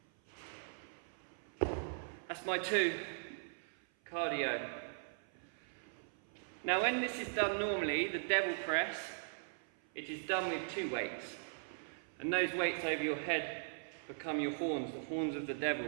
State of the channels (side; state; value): left; silent; 51 dB below the other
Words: That's my 2 cardio. Now when this is done normally, the devil press, it is done with 2 weights. And those weights over your head become your horns, the horns of the